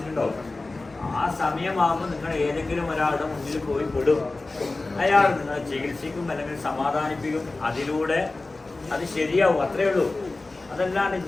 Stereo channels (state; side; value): quieter; right; 3.3 dB